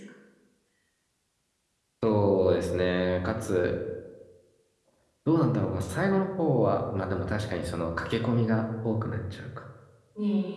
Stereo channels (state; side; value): identical; both; correlation 1.00